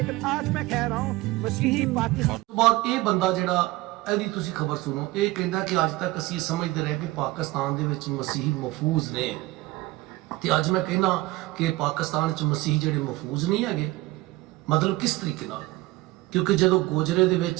आज मैं कह रहा हूँ मसीही पाकिस्तान। ਬਾਅਦ ਇਹ ਬੰਦਾ ਜਿਹੜਾ ਇਹਦੀ ਤੁਸੀਂ ਖਬਰ ਸੁਣੋ, ਇਹ ਕਹਿੰਦਾ ਕਿ ਅੱਜ ਤੱਕ ਅਸੀਂ ਸਮਝਦੇ ਰਹੇ ਕਿ ਪਾਕਿਸਤਾਨ ਦੇ ਵਿੱਚ ਮਸੀਹੀ ਮਹਫੂਜ਼ ਨੇ, ਤੇ ਅੱਜ ਮੈਂ ਕਹਿੰਦਾ ਕਿ ਪਾਕਿਸਤਾਨ 'ਚ ਮਸੀਹੀ ਜਿਹੜੇ ਮਹਫੂਜ਼ ਨਹੀਂ ਹੈਗੇ। ਮਤਲਬ ਕਿਸ ਤਰੀਕੇ ਨਾਲ? ਕਿਉਂਕਿ ਜਦੋਂ ਗੋਜਰੇ ਦੇ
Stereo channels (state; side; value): quieter; left; 19.7 dB